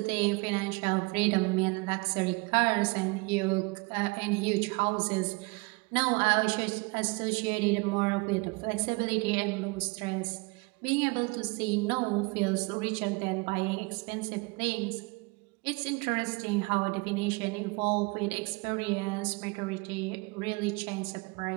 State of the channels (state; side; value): quieter; left; 27.6 dB